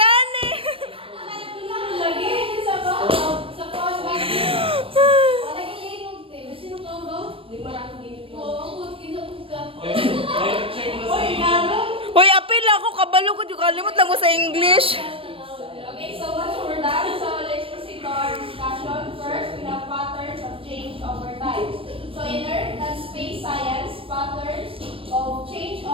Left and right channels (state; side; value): late; left; 0.26 ms